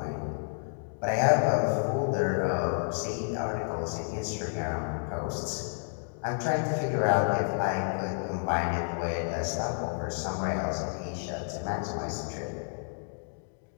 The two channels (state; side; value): silent; right; digital silence